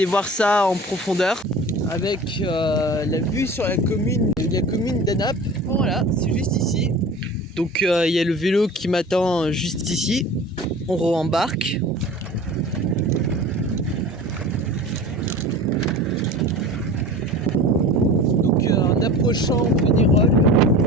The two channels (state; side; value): normal; both; correlation 0.38